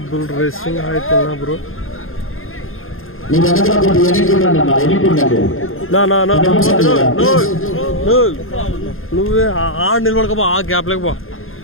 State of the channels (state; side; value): late; right; 0.60 ms